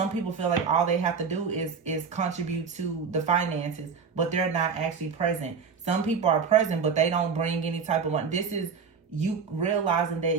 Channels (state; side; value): quieter; left; 5.9 dB